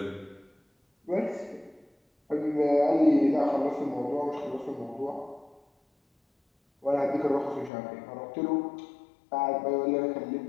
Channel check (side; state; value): right; drops out; at 7.7 s